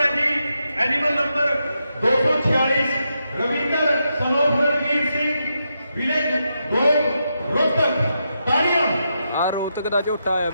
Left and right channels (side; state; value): both; inverted; correlation -0.84